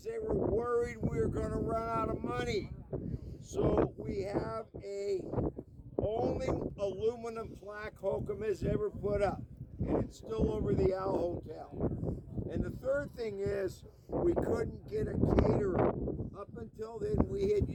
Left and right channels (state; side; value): identical; both; correlation 1.00